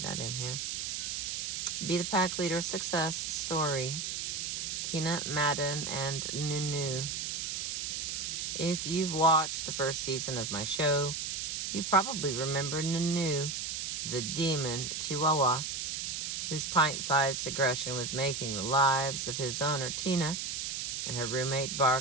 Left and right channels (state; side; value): noise; right; hiss, 3 dB below the sound